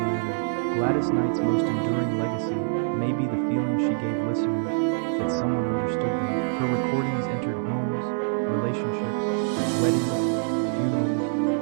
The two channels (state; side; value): silent; left; digital silence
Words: Gladys Knight's most enduring legacy may be the feeling she gave listeners that someone understood them. Her recordings entered homes, relationships, weddings, funerals,